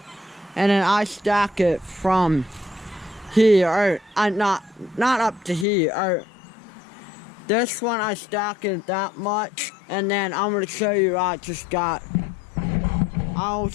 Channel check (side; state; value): right; drops out; at 5.7 s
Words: and then I stack it from here. Not up to here. This one I stack it that much, and then I'm gonna show you. I'll